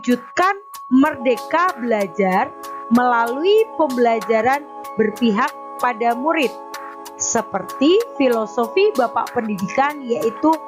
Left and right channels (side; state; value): both; identical; correlation 1.00